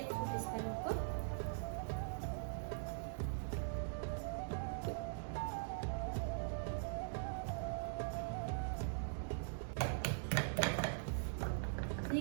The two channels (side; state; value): left; silent; digital silence